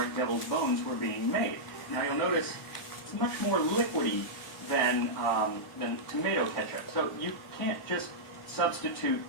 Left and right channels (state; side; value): normal; both; correlation -0.09